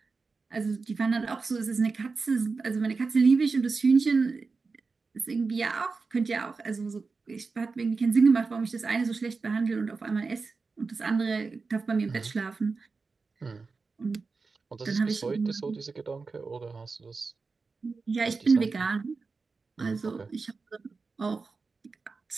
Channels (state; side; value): quieter; left; 4.4 dB